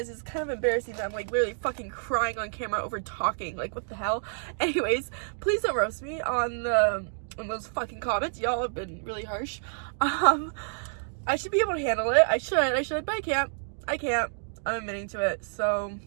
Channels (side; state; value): left; silent; digital silence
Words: It's kind of embarrassing that I'm like literally fucking crying on camera over talking. Like, what the hell? Anyways, please don't roast me on those fucking comments. Y'all have been really harsh. I should be able to handle it. I should, but I can't. I'm admitting to it. So